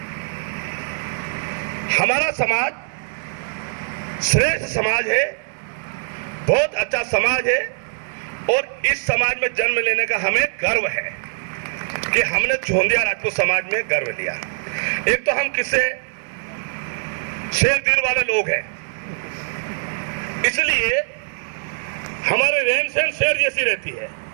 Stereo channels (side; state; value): left; silent; digital silence